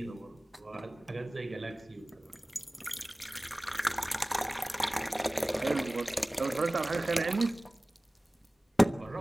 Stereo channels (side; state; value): both; normal; correlation 0.98